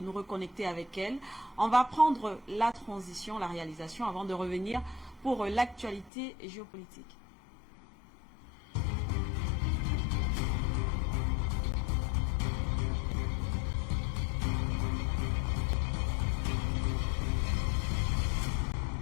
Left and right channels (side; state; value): right; drops out; at 6.1 s